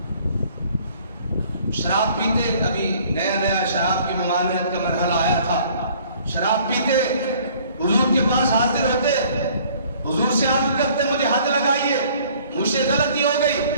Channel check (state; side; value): inverted; both; correlation -0.56